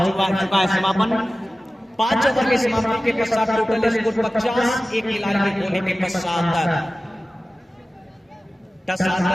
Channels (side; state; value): both; normal; correlation 0.96